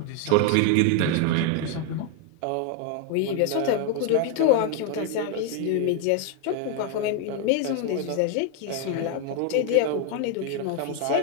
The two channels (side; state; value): both; different; correlation 0.01